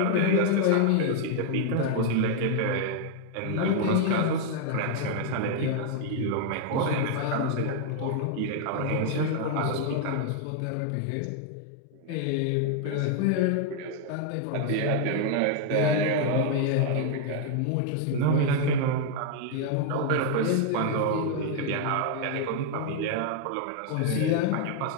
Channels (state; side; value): different; both; correlation 0.00